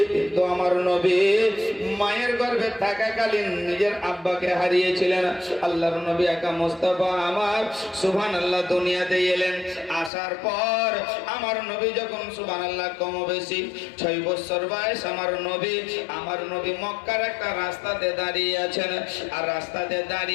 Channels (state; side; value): drops out; right; at 10.1 s